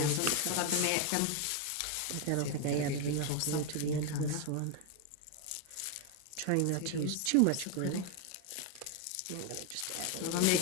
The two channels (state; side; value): different; both; correlation 0.01